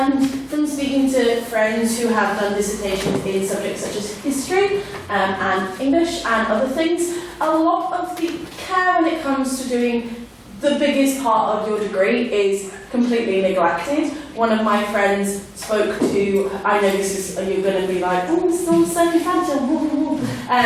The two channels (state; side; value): identical; both; correlation 1.00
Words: from speaking to friends who have done dissertations in subjects such as history and English and other things, a lot of the care when it comes to doing the biggest part of your degree is completely neglected. One of my friends spoke to, I know this is, you're going to be like, oh, it's all so fragile,